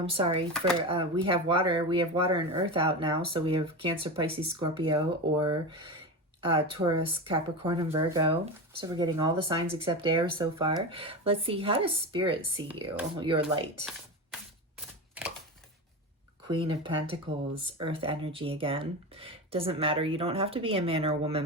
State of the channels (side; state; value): both; normal; correlation 0.22